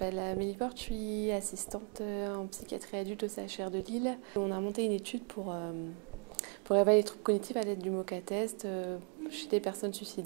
Amélie Porte, je suis assistante en psychiatrie adulte au CHR de Lille. On a monté une étude pour évaluer les troubles cognitifs à l'aide du MoCA-test chez des personnes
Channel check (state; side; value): quieter; left; 34.5 dB